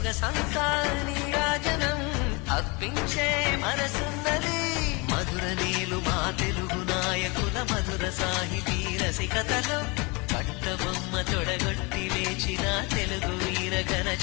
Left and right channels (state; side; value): quieter; right; 28.2 dB